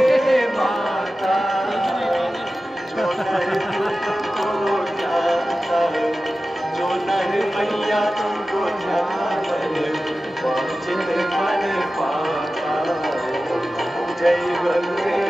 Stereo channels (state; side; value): normal; both; correlation 0.95